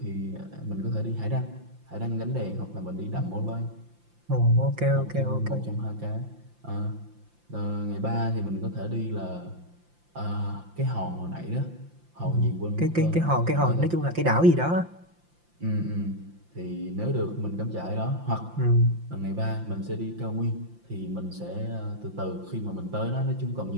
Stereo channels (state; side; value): late; left; 5.8 ms